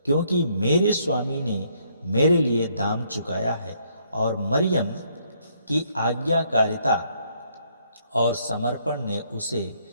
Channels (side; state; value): both; inverted; correlation -0.70